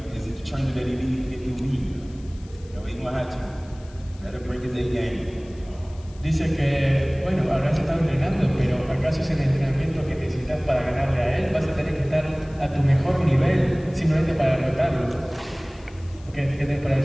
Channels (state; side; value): noise; left; hiss, 26 dB below the sound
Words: is it the training that he needs to get through me? He's going to have to. Let him bring his A game. Dice que, bueno, habrás estado entrenando, pero ¿acaso es el entrenamiento que necesitas para ganarle a él? Vas a tener que estar a tu mejor nivel simplemente para derrotarlo. ¿Qué tienes para